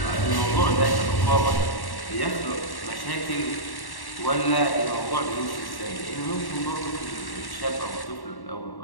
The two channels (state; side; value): late; right; 1.1 ms